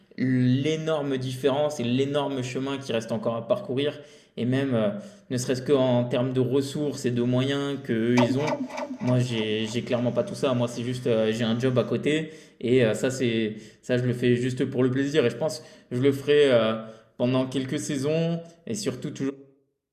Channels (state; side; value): identical; both; correlation 1.00